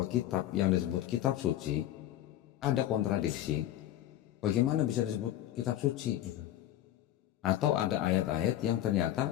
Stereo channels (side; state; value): right; quieter; 12.9 dB